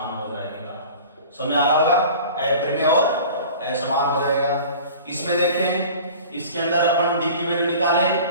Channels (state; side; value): inverted; both; correlation -0.42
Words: हो जाएगा। समझ आ रहा होगा, अपरिमेय और असमान हो जाएगा। इसमें देखें, इसके अंदर अपन d की वैल्यू निकालें,